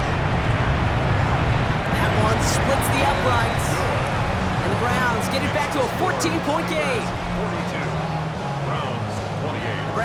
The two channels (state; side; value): identical; both; correlation 1.00